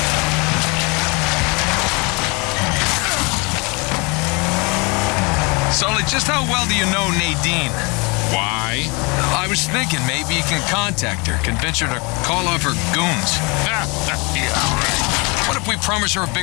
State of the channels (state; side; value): quieter; right; 29.2 dB